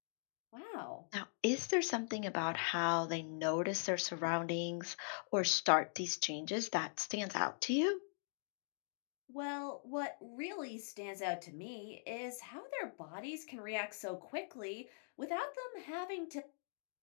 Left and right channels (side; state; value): right; silent; digital silence